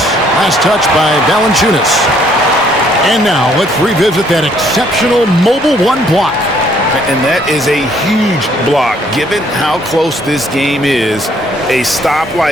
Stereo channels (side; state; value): both; normal; correlation 0.64